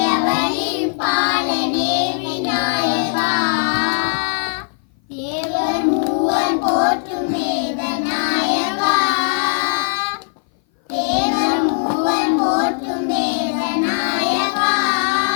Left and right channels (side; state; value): right; silent; 58 dB below the other